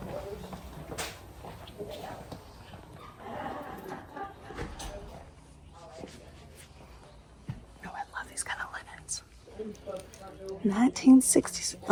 Oh, I love these kind of linens. 1960s.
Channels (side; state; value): both; identical; correlation 1.00